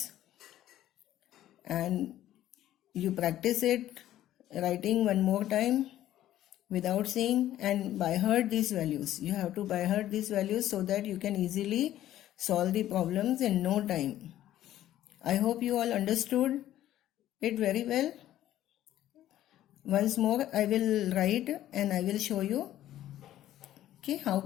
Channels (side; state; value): right; quieter; 13.0 dB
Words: And you practice it writing one more time without seeing and by heart these values. You have to by heart these values so that you can easily solve the problems in no time. I hope you all understood it very well. Once more I will write and I will show you how